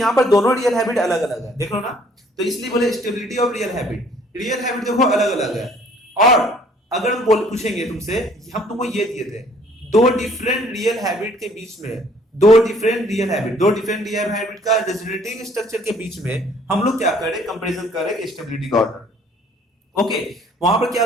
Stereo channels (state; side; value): normal; both; correlation 0.59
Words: पर दोनों रियल हैबिट अलग अलग है, देख लो ना, तो इसलिए बोले stability of real habit, real habit देखो अलग अलग है। और अगर हम पूछेंगे तुमसे, हम तुमको ये दिए थे दो डिफरेंट रियल हैबिट के बीच में, दो डिफरेंट रियल हैबिट का रेजोनेटिंग स्ट्रक्चर के बीच में हम लोग क्या करें, कंपैरिजन करें स्टेबिलिटी का ऑर्डर। ओके, वहां पर